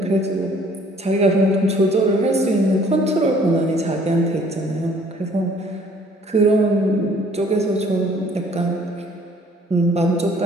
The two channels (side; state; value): both; normal; correlation 0.57